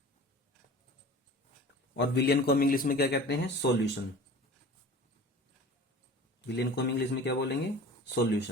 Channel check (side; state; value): both; normal; correlation 0.40